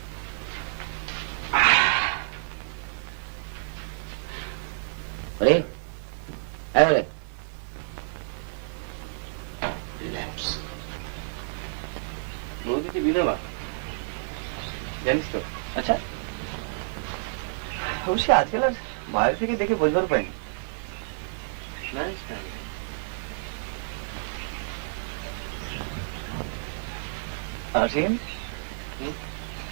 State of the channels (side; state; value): left; silent; digital silence